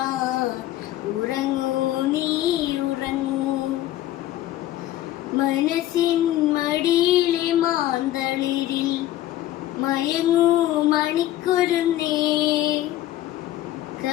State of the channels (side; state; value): right; quieter; 14.1 dB